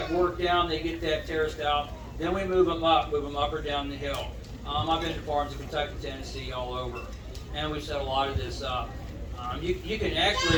work down, they get that terraced out, then we move them up or down the hill. I've been to farms in Kentucky, Tennessee, all over, and we've set a lot of this up. You can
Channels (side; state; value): both; identical; correlation 1.00